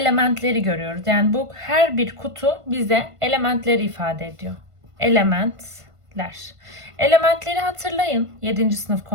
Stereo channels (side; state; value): left; late; 1.5 ms